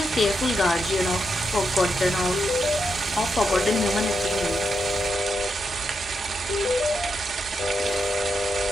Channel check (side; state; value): both; normal; correlation 0.83